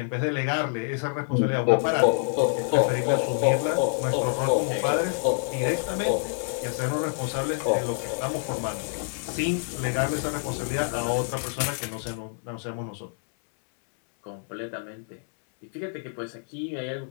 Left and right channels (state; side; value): silent; right; 60 dB below the other